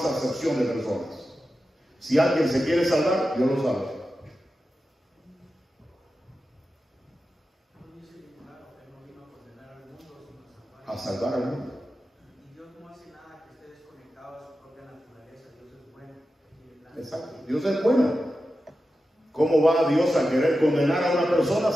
acepción de personas. Si alguien se quiere salvar, Dios lo salva. A salvar al mundo. Y Dios no hace nada que esté desconectado a su propia naturaleza. Dios es bueno. Exacto. Dios es bueno. ¿Cómo va Dios a querer condenar a una persona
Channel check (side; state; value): both; normal; correlation 0.92